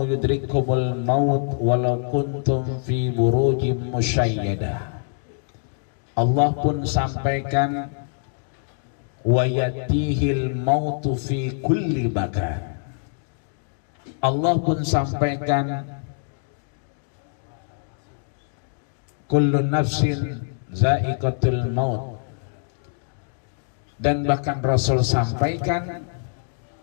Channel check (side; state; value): right; silent; digital silence